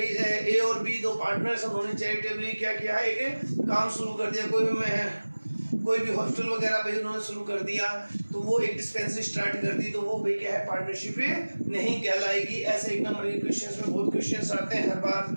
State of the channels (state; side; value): inverted; both; correlation -1.00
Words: ए और बी दो पार्टनर्स, उन्होंने चैरिटेबली क्या किया? एक काम शुरू कर दिया, कोई भी हॉस्टल वगैरह भाई उन्होंने शुरू कर दिया, तो वो एक डिस्पेंसरी स्टार्ट कर दी, तो वो भाई क्या है? पार्टनरशिप नहीं कहलाएगी। ऐसे एक नंबर के क्वेश्चंस में बहुत क्वेश्चंस आते हैं हर बार,